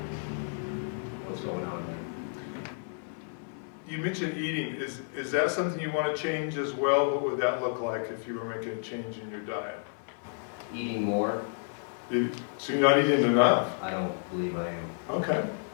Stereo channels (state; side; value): silent; right; 57 dB below the other